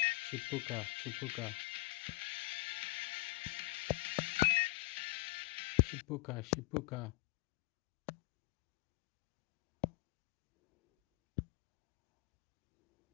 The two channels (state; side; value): quieter; right; 22.2 dB